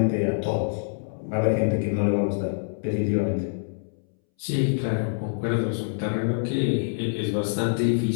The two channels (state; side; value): silent; right; 61 dB below the other